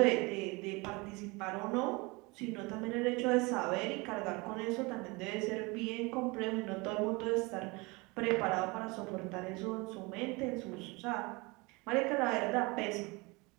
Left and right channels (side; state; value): left; quieter; 26.0 dB